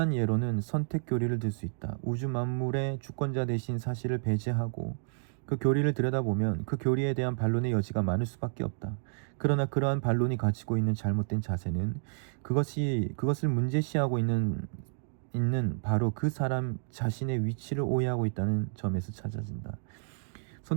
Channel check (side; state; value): left; silent; digital silence